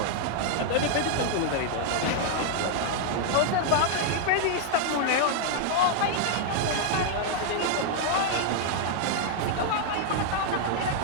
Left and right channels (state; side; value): different; both; correlation 0.00